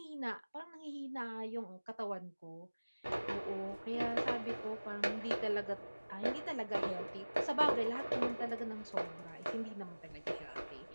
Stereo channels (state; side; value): inverted; both; correlation -1.00